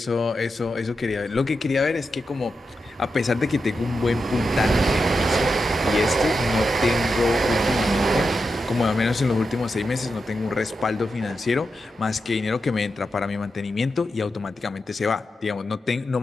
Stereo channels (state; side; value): normal; both; correlation 0.88